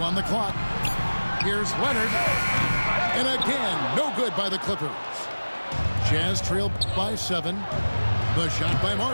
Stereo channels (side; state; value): both; inverted; correlation -1.00